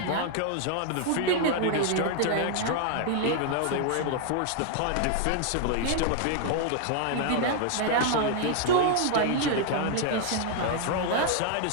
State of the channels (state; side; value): different; both; correlation 0.00